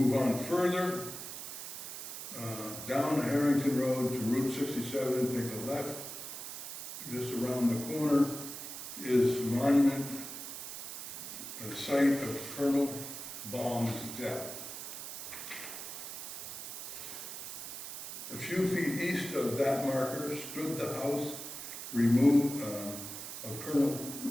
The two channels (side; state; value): right; noise; hiss, 8 dB below the sound